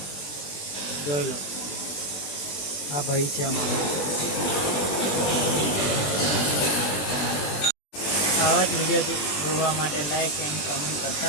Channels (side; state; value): right; late; 20 ms